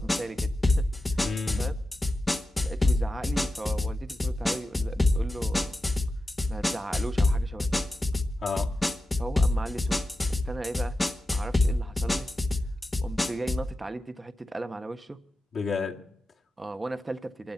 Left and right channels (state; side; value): normal; both; correlation 0.92